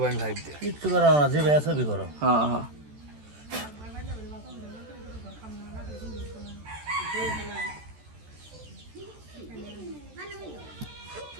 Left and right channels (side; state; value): left; late; 14 ms